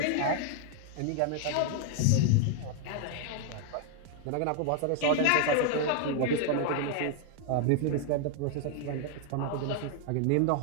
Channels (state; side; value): different; both; correlation 0.00